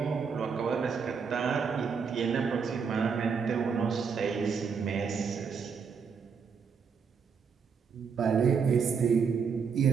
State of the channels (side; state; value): left; quieter; 6.0 dB